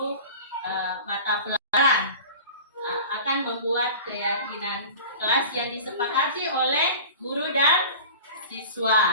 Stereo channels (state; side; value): inverted; both; correlation -0.37